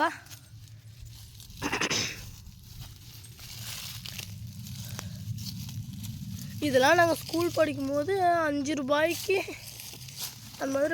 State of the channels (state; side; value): identical; both; correlation 1.00